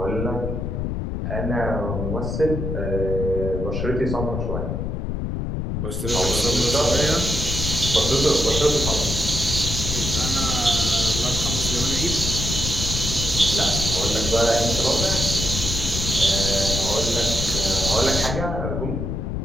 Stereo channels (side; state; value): left; noise; rumble, 2 dB below the sound